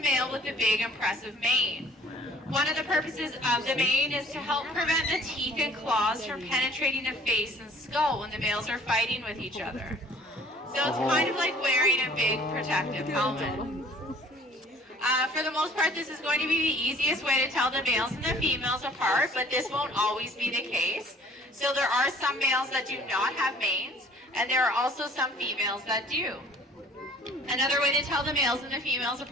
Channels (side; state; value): both; normal; correlation 0.53